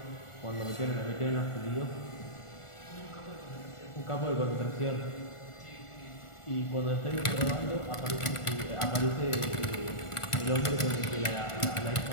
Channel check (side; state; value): right; late; 1.4 ms